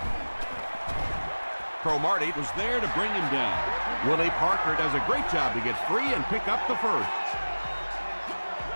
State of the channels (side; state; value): both; inverted; correlation -1.00